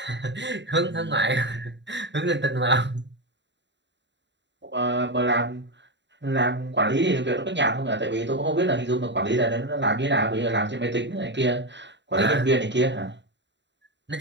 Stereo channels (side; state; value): left; late; 0.52 ms